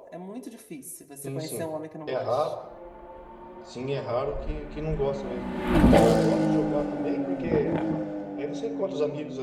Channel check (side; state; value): both; identical; correlation 1.00